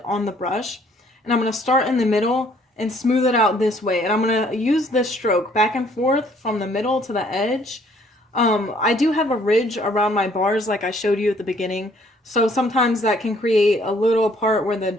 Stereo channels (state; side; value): normal; both; correlation 0.62